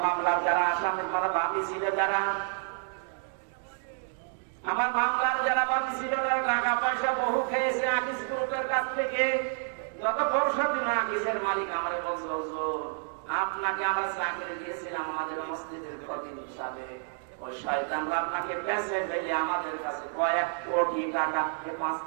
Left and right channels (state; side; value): silent; left; 58 dB below the other